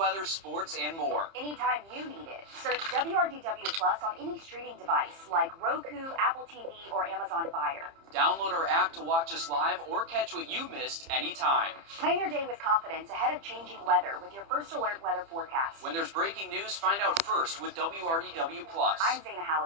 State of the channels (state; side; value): late; left; 30 ms